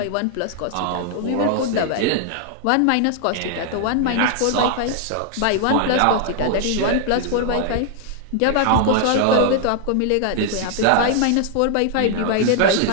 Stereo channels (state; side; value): different; both; correlation 0.00